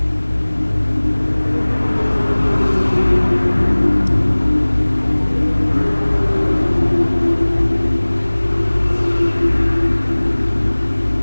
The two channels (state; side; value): inverted; both; correlation -1.00